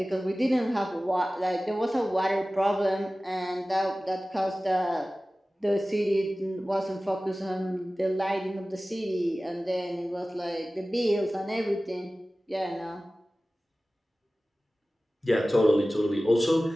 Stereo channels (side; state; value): both; normal; correlation 0.97